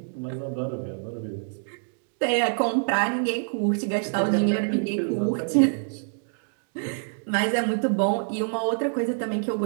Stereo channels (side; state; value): left; silent; digital silence